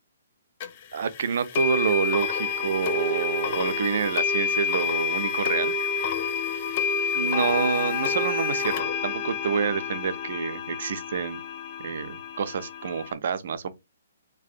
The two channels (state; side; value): inverted; both; correlation -0.35